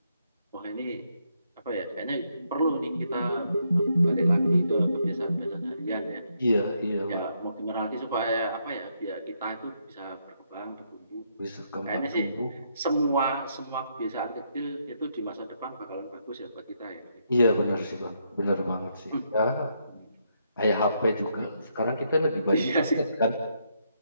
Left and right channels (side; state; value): both; inverted; correlation -0.76